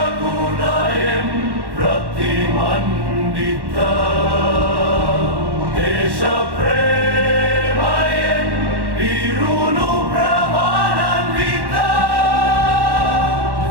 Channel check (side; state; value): left; late; 1.1 ms